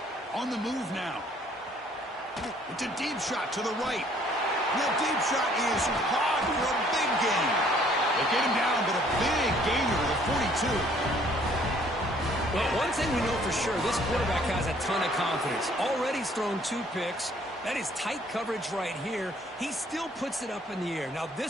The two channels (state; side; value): normal; both; correlation 0.60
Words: On the move now. It's a deep shot to the right. That deep shot is caught for a big gain. They get him down, but a big gainer to the 42. Well, one thing we know for sure, this quarterback has a ton of confidence. Already he's thrown 2 picks. That is tight coverage right here. He still puts it up in the air. Now,